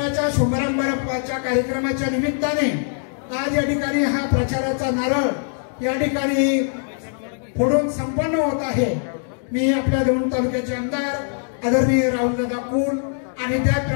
शुभारंभाच्या कार्यक्रमाच्या निमित्ताने आज या ठिकाणी हा प्रचाराचा नारळ या ठिकाणी फोडून संपन्न होत आहे। मी आपल्या दौंड तालुक्याचे आमदार आदरणीय राहुलदादा कुल आणि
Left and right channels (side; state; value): right; silent; 59 dB below the other